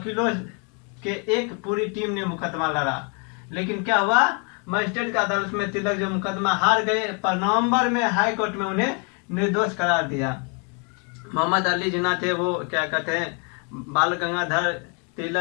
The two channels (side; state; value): right; quieter; 35.1 dB